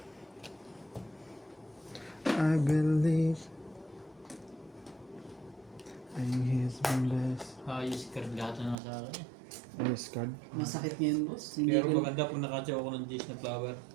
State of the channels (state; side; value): drops out; left; at 8.8 s